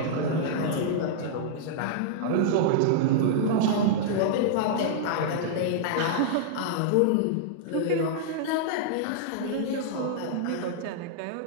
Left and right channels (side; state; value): both; different; correlation -0.02